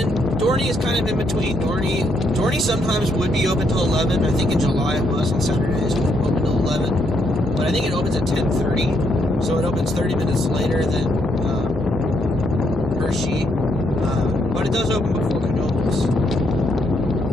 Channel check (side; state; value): both; normal; correlation 0.75